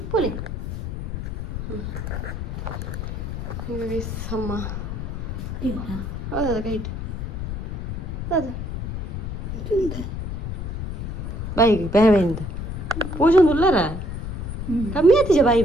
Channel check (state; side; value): noise; left; rumble, 5 dB below the sound